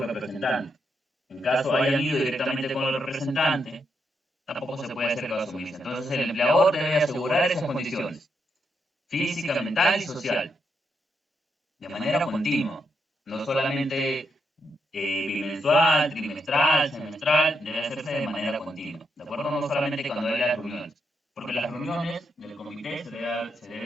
En caso hayan ido directamente con el representante, tampoco se puede hacer caso omiso. Entonces el empleador debe asegurar esas condiciones, física, mental y social, de manera continua, no solamente bimensual, trimestral, semestral, debe hacerse de manera continua, ¿de acuerdo? No solamente cuando hay las reuniones, porque las reuniones del comité se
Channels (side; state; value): both; normal; correlation 0.81